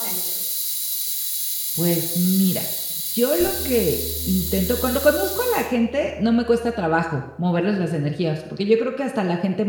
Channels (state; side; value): identical; both; correlation 1.00